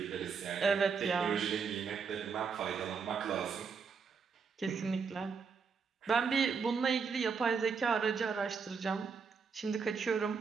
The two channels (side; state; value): left; quieter; 5.6 dB